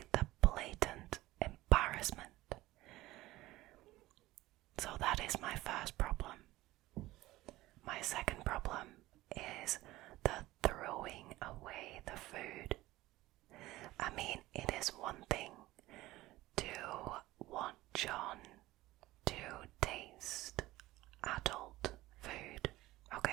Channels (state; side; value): quieter; left; 17.6 dB